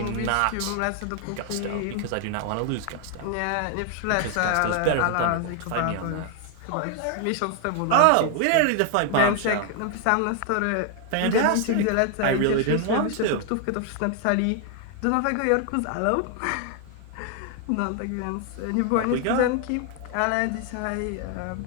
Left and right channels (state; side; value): different; both; correlation 0.00